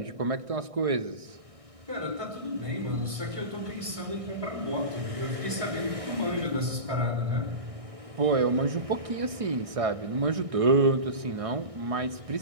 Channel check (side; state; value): left; late; 1.6 ms